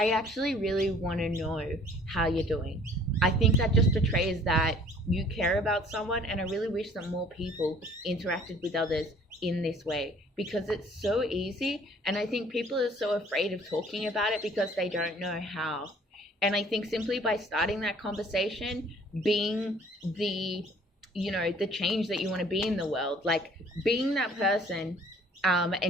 actually really want to know how you're doing. I think that just betrays that you care about someone, and I really wish that more people interacted with others in this way, because it's so easy, and I think people are so afraid of talking about it because they don't know how. And I think simply by starting that conversation, being the, you know, the change that you want to be in the world, like being that person,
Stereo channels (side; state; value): both; normal; correlation 0.55